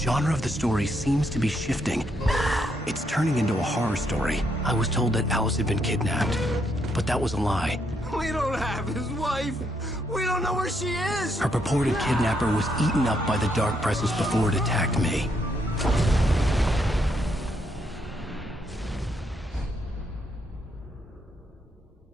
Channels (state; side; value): normal; both; correlation 0.75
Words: of the story seems to be shifting. It's turning into a horror story. I was told that Alice had been kidnapped, but that was a lie. We don't have his wife. We don't know where she is. Her purported kidnapper was eaten up by the dark presence before it attacked me.